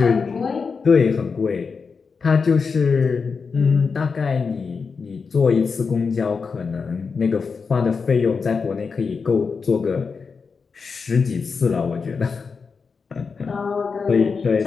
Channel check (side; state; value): right; quieter; 5.2 dB